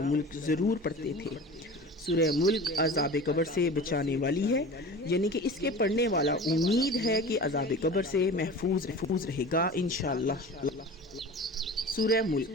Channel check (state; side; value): normal; both; correlation 0.36